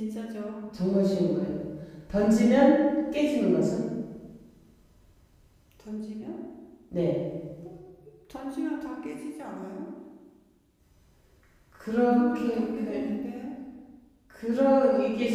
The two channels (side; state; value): both; identical; correlation 1.00